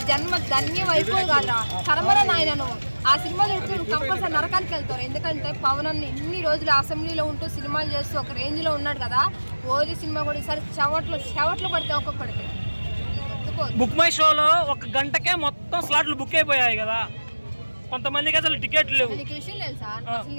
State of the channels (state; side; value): inverted; both; correlation -1.00